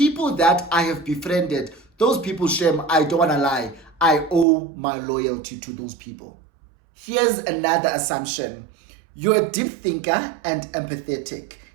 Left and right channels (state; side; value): drops out; left; at 4.5 s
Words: that I have befriended, those people, Shem, I don't want to lie, I owe my loyalty to those people. Here's another assumption. You're a deep thinker and empathetic,